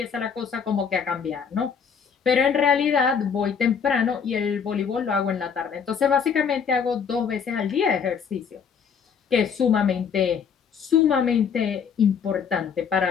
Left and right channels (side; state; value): right; quieter; 6.8 dB